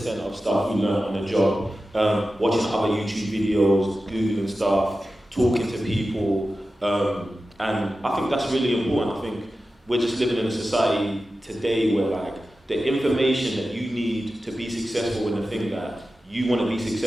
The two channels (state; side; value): normal; both; correlation 0.93